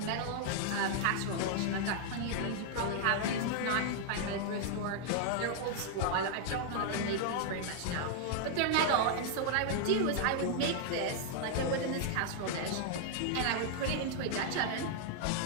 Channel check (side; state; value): both; different; correlation -0.01